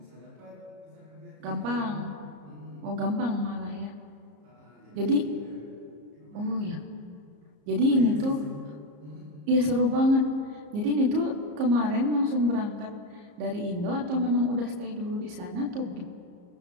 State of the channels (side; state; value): left; late; 34 ms